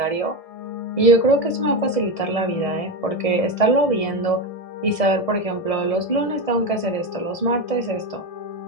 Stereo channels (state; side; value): late; right; 1.6 ms